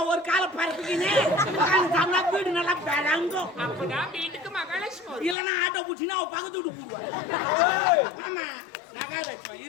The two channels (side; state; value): right; drops out; at 5.4 s